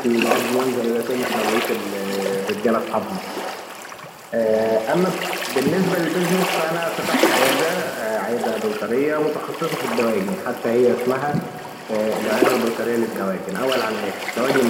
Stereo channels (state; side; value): identical; both; correlation 1.00